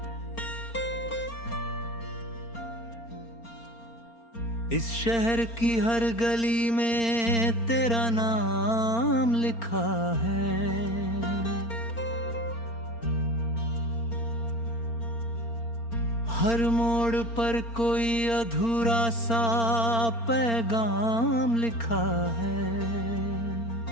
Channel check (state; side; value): late; right; 4.4 ms